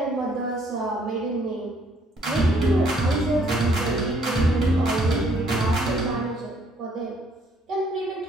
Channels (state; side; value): normal; both; correlation 0.65